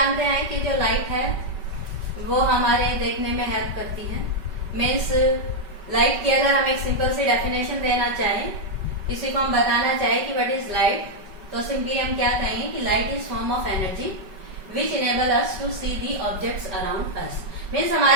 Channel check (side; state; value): left; late; 5.2 ms